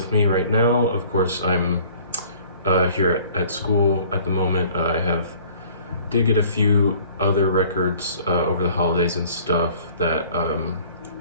me right now. Of course, I'm here at school at the moment. Did get a few other records over the holidays and stuff that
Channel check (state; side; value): inverted; both; correlation -0.52